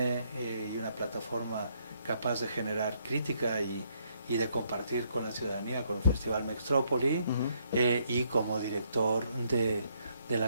y una plataforma capaz de generar crítica y de compartir con la ciudadanía, con el Festival Mextrópoli, y como director de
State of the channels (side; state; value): both; inverted; correlation -0.72